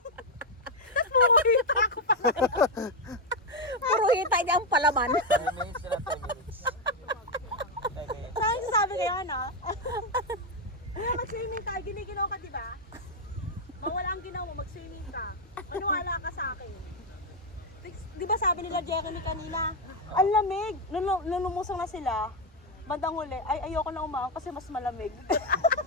Tapos pumulita ako pa. Puro hita niya ang palaman. 10 minutes sila, 10 minutes. 10 minutes. Saan sasabi kayo, ano? Kaya mag-swimming tayo, giniginaw ka, di ba? Mawala ang ginaw mo, mag-swimming ka. Maniwala ka sa akin. Di ba sabi nila Jeremy kanina, ang lamig. Nung lumusong na sila, bandang huli, ay ayoko na umahon kasi mas malamig.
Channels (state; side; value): normal; both; correlation 0.04